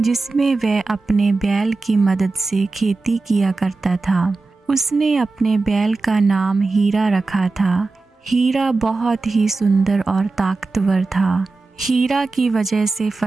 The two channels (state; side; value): quieter; left; 3.7 dB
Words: वह अपने बैल की मदद से खेती किया करता था। उसने अपने बैल का नाम हीरा रखा था। हीरा बहुत ही सुंदर और ताकतवर था। हीरा की वजह से